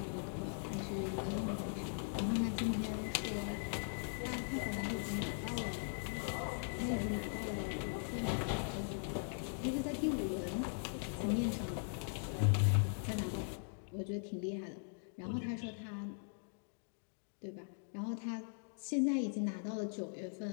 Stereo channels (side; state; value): right; silent; digital silence